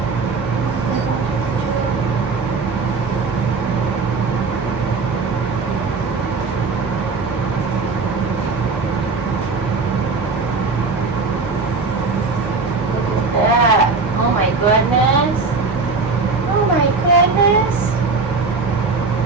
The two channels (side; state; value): left; quieter; 4.3 dB